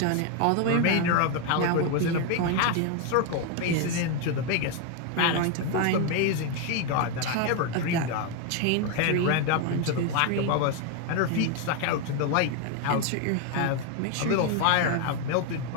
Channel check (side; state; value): both; different; correlation 0.01